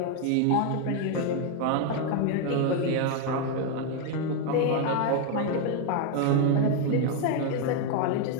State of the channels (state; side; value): different; both; correlation 0.01